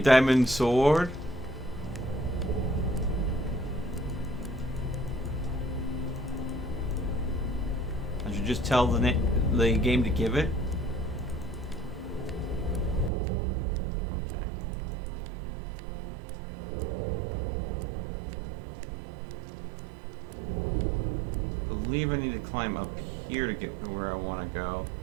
sword? I should just tell the game to give it? I believe I need to climb up here to get to where I want to go.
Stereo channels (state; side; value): drops out; left; at 13.1 s